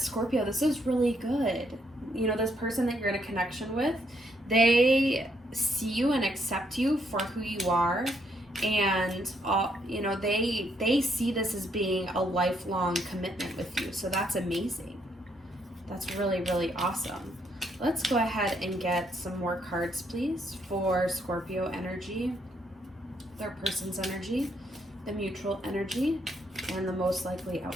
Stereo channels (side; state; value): both; normal; correlation 0.73